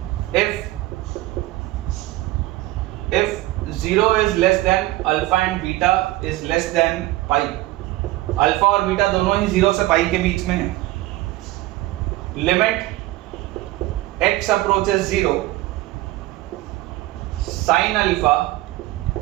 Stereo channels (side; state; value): left; quieter; 17.6 dB